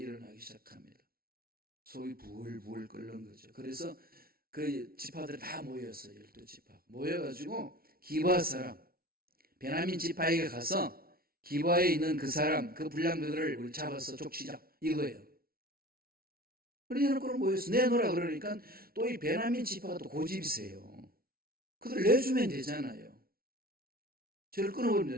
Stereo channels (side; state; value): left; late; 0.44 ms